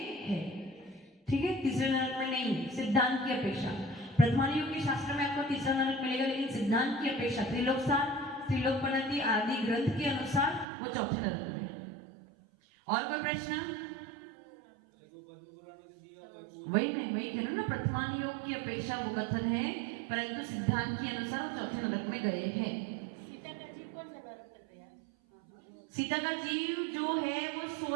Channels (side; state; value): left; drops out; at 10.7 s